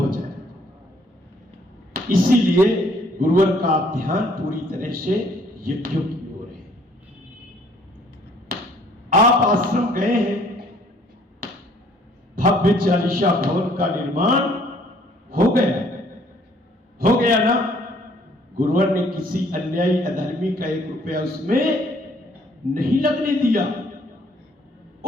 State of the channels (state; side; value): normal; both; correlation 0.61